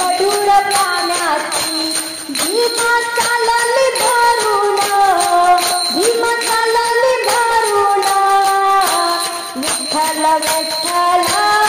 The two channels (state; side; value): identical; both; correlation 1.00